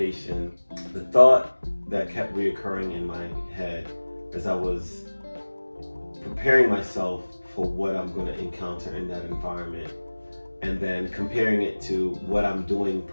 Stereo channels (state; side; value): inverted; both; correlation -1.00